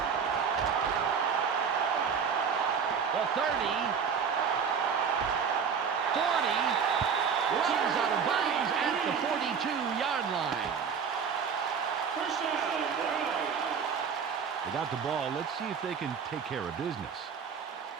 The 30. 40. Runs out of bounds at the 42-yard line. First down, Browns. They got the ball. Let's see if they can take care of business.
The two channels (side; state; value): left; quieter; 6.6 dB